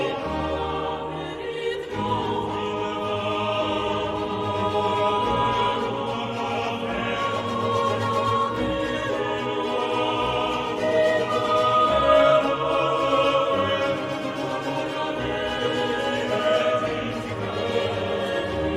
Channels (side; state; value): both; identical; correlation 1.00